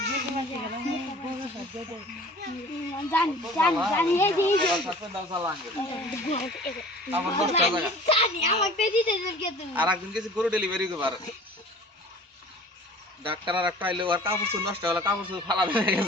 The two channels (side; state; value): both; normal; correlation 0.45